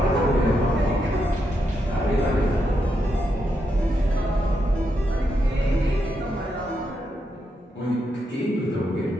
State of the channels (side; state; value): both; normal; correlation 0.82